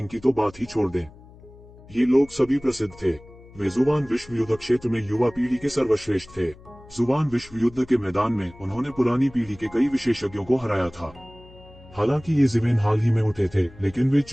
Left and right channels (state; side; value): noise; left; hum, 22 dB below the sound